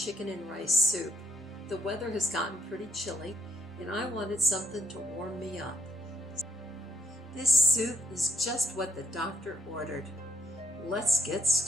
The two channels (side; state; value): both; normal; correlation 0.71